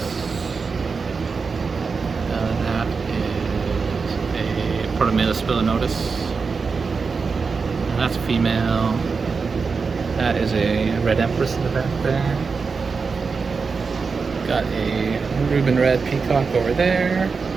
That is a Protomela spilinotus. And that's a female. That is a red empress in the back there. Got a Reuben red peacock over there.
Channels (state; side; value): quieter; left; 4.9 dB